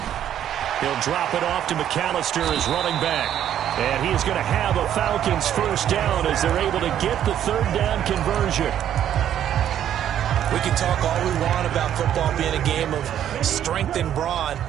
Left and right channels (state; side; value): quieter; left; 10.5 dB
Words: He'll drop it off to McAllister as running back. And he is going to have a Falcons first down as they're able to get the third down conversion. We can talk all we want about football being a game of strength and brawn.